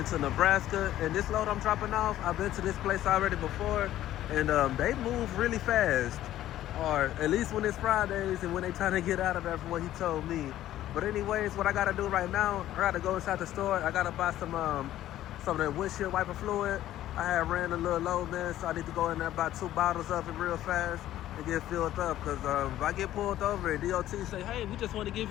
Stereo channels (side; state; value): right; quieter; 13.3 dB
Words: Nebraska, and this load I'm dropping off, I've been to this place already before, and they move really fast, or at least when it's Fridays and when they trying to get out of there from what he told me. But anyways, what I gotta do right now, I gotta go inside the store. I gotta buy some of that windshield wiper fluid. I had ran a little low, man, so I need to go in there buy 2 bottles of it real fast and get filled up, because if I get pulled over and DOT say, hey, we just want to give